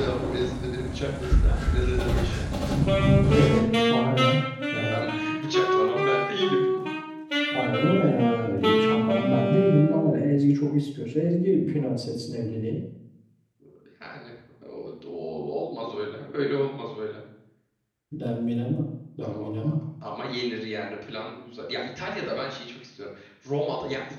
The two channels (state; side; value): identical; both; correlation 1.00